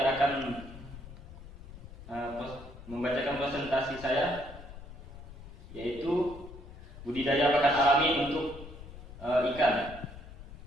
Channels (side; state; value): left; noise; rumble, 15 dB below the sound